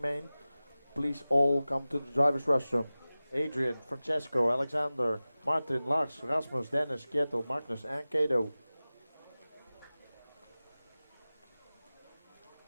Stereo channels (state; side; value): inverted; both; correlation -0.97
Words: main, please all come to the driver's restroom. Adrian, Francesco, Alexander, Martin, Lars, Rasmus, Dennis, Kjetil, Magnus, and Kato.